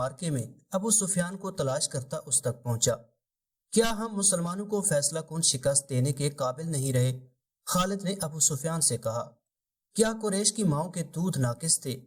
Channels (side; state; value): both; identical; correlation 1.00